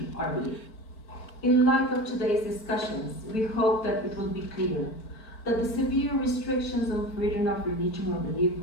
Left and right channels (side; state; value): right; late; 4.5 ms